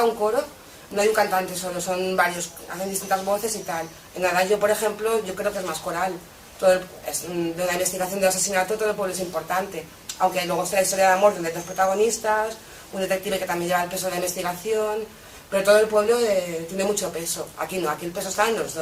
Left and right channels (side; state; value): both; identical; correlation 1.00